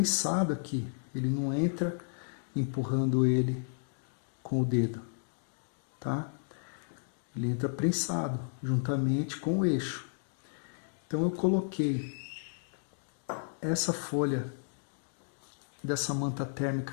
aqui, ele não entra empurrando ele com o dedo, tá? Ele entra prensado, juntamente com o eixo. Então eu coloquei essa folha dessa manta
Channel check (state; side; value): silent; right; digital silence